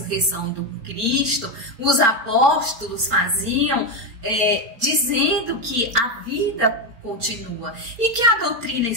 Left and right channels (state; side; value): late; left; 4.1 ms